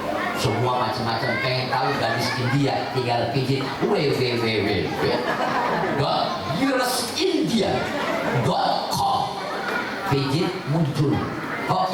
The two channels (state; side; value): identical; both; correlation 1.00